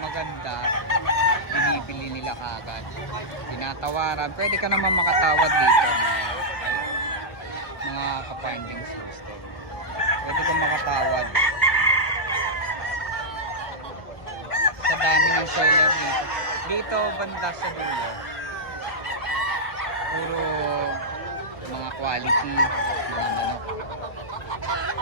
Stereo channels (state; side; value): late; right; 1.5 ms